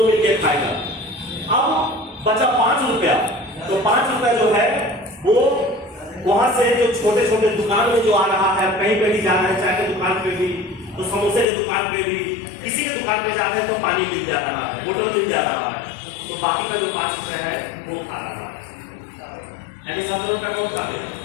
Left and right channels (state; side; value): drops out; right; at 11.5 s